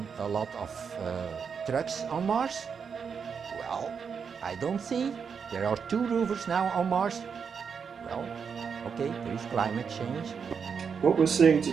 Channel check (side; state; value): left; quieter; 6.3 dB